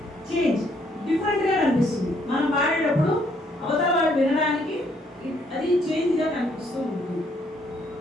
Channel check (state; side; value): normal; both; correlation 0.69